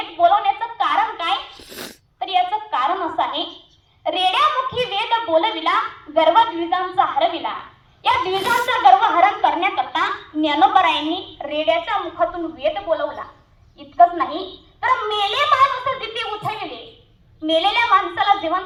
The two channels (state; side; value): identical; both; correlation 1.00